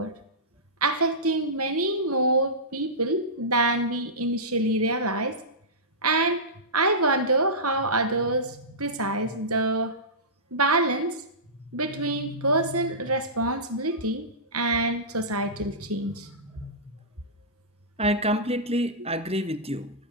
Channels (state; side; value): normal; both; correlation -0.17